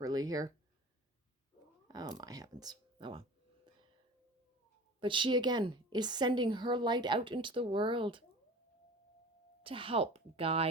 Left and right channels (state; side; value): normal; both; correlation 0.39